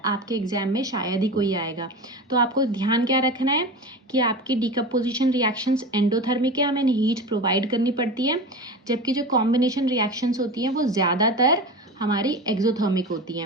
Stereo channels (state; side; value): normal; both; correlation 0.29